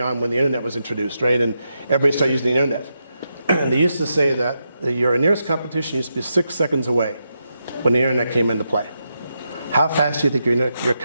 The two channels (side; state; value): both; inverted; correlation -0.85